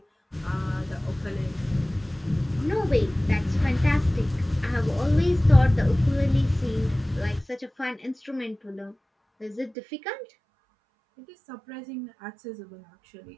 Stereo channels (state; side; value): drops out; left; at 9.8 s